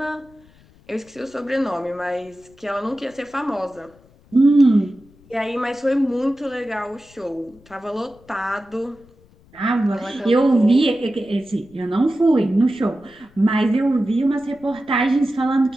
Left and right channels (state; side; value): noise; left; rumble, 28 dB below the sound